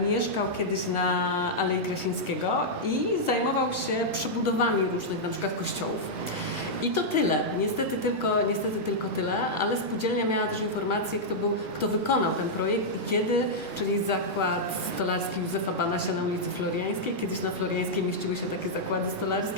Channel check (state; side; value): late; left; 2.4 ms